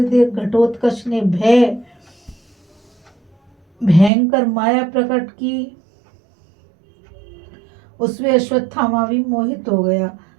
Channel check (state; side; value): drops out; left; at 4.1 s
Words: देख घटोत्कच ने भयंकर माया प्रकट की। उसमें अश्वत्थामा भी मोहित हो गया।